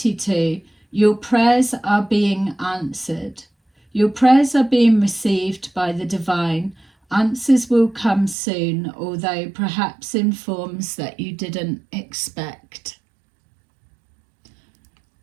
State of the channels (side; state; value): left; drops out; at 8.3 s